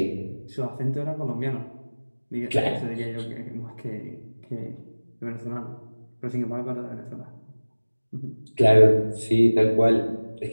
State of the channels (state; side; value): inverted; both; correlation -1.00